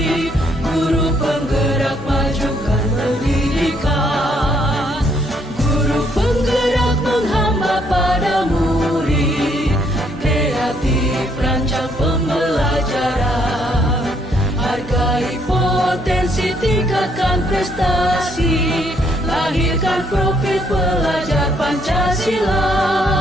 guru penggerak majukan pendidikan. Guru penggerak menghamba pada murid, kreatif rancang pembelajaran. Hargai potensi, tingkatkan prestasi, lahirkan profil pelajar Pancasila.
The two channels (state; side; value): normal; both; correlation 0.69